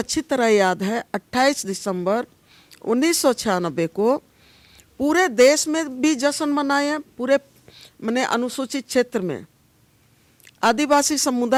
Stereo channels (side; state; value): both; identical; correlation 1.00